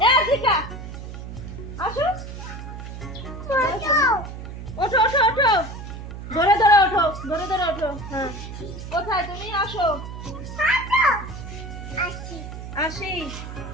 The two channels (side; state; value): right; noise; hum, 10 dB below the sound